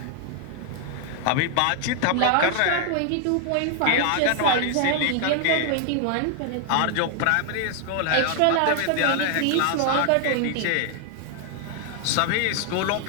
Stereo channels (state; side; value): different; both; correlation 0.00